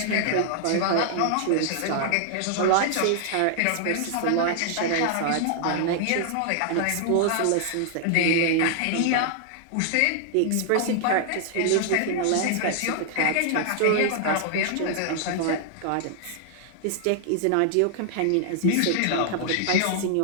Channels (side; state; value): both; different; correlation 0.00